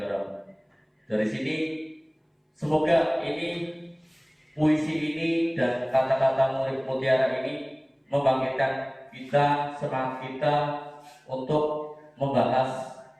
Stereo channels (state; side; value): identical; both; correlation 1.00